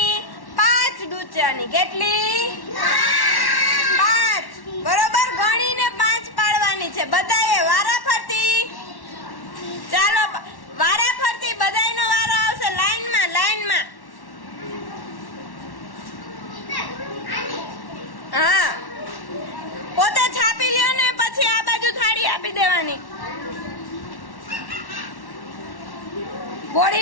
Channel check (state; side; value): late; right; 1.1 ms